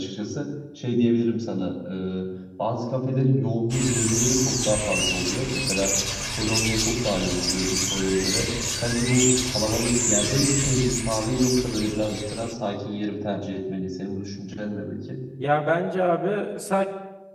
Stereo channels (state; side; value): identical; both; correlation 1.00